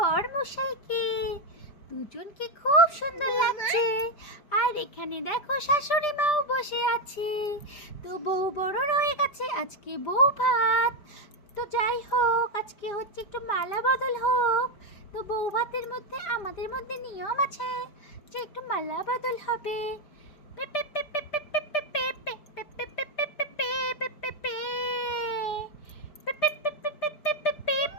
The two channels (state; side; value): late; right; 5.1 ms